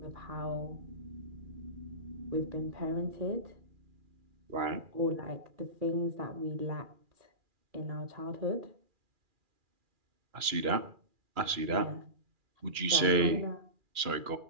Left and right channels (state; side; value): late; left; 2.4 ms